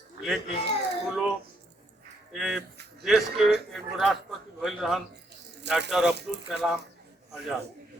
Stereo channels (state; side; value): normal; both; correlation 0.73